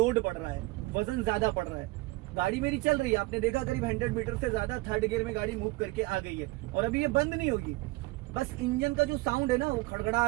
पड़ रहा है, वजन ज्यादा पड़ रहा है। गाड़ी मेरी चल रही है, आपने देखा करीब 100 मीटर से ज्यादा थर्ड गियर में गाड़ी मूव करके आ गई है, और अभी ये बंद नहीं होगी। बस इंजन का जो साउंड है ना वो खड़खड़ा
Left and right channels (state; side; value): quieter; left; 22.4 dB